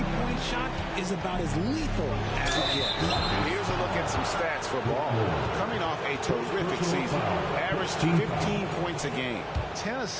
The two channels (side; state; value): both; identical; correlation 1.00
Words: shot is about as lethal as it gets. And here's a look at some stats for Ball. Coming off a terrific season. Averaged 15 points a game, 10